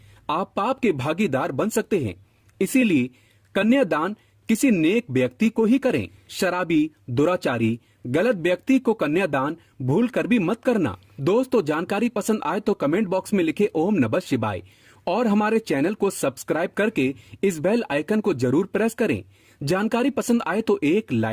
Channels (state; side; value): identical; both; correlation 1.00